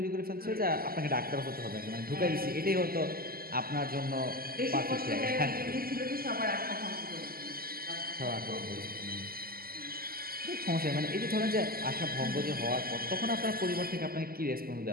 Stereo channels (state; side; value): late; left; 0.43 ms